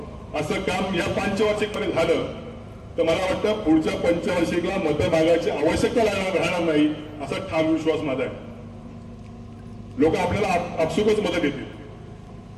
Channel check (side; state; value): both; identical; correlation 1.00